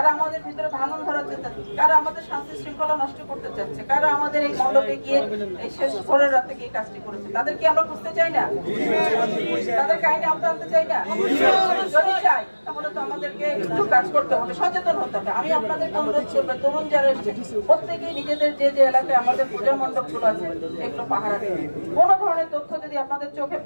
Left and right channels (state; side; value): inverted; both; correlation -1.00